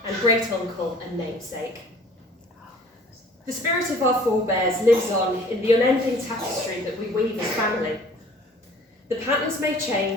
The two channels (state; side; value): normal; both; correlation 0.51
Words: and great-uncle and namesake. The spirit of our forebears lives on in the unending tapestry that we weave as family. The patterns may